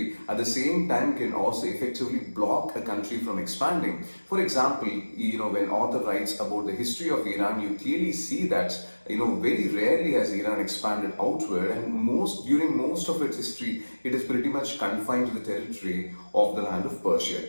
at the same time can also effectively block a country from expanding. For example, when author writes about the history of Iran, you clearly see that very rarely has Iran expanded outward, and during most of its history, it is pretty much confined to the territory of the land of Persia.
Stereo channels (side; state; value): both; inverted; correlation -1.00